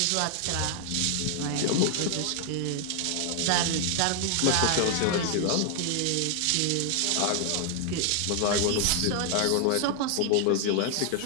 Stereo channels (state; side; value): different; both; correlation 0.00